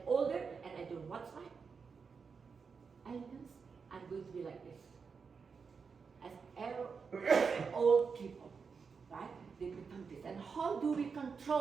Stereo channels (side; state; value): left; quieter; 5.5 dB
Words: older and I don't watch my elegance, I'm going to be like this. As old people, right? They become this. And how do we